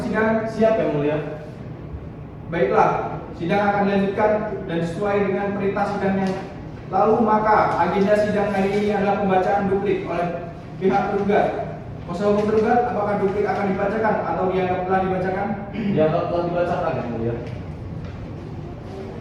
Siap yang mulia. Baiklah, sidang akan dilanjutkan dan sesuai dengan perintah sidang yang lalu, maka agenda sidang hari ini adalah pembacaan duplik oleh pihak tergugat. Kuasa hukum tergugat, apakah duplik akan dibacakan atau dianggap telah dibacakan? Dianggap telah dibacakan yang mulia.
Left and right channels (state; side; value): identical; both; correlation 1.00